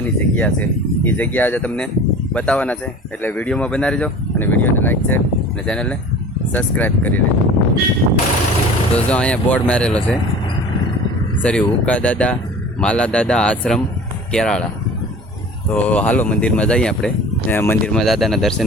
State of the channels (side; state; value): both; normal; correlation 0.41